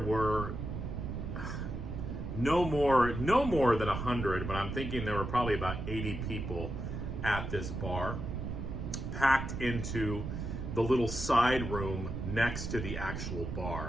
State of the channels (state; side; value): noise; right; rumble, 5 dB below the sound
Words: no more than 100, but I'm thinking there were probably about 80 people at this bar, packed into the little side room next to the actual